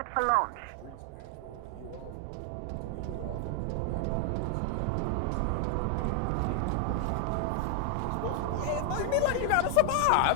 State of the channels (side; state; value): both; different; correlation 0.00